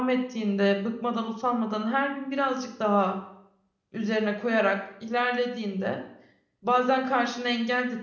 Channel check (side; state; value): both; identical; correlation 1.00